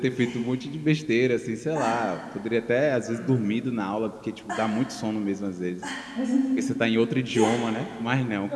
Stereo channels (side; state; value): both; identical; correlation 1.00